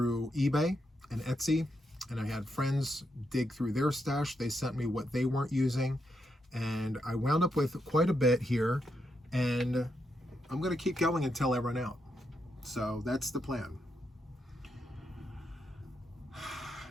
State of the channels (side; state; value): both; normal; correlation 0.82